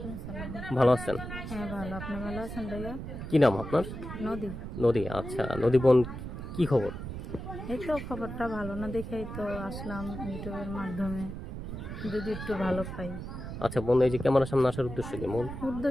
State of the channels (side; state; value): right; noise; rumble, 8 dB below the sound